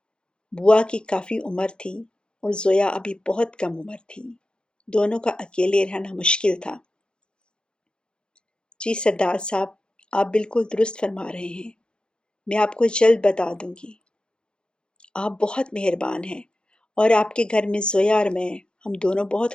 بوا کی کافی عمر تھی اور زویا ابھی بہت کم عمر تھی۔ دونوں کا اکیلے رہنا مشکل تھا۔ جی سردار صاحب، آپ بالکل درست فرما رہے ہیں۔ میں آپ کو جلد بتا دوں گی۔ آپ بہت مہربان ہیں اور آپ کے گھر میں زویا اور میں، ہم دونوں بہت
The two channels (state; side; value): late; right; 0.050 ms